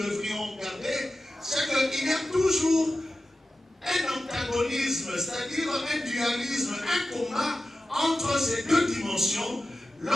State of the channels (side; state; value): both; normal; correlation 0.94